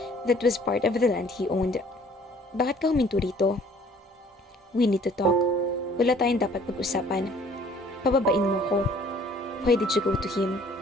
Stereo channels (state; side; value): normal; both; correlation 0.56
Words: that was part of the land he owned. Bakit ka huminto rito? We need to talk. Wala tayong dapat pag-usapan. Pababain mo ko. Why did you go to him?